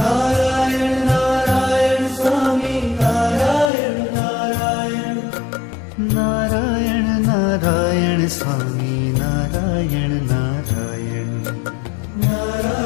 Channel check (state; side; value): drops out; right; at 3.7 s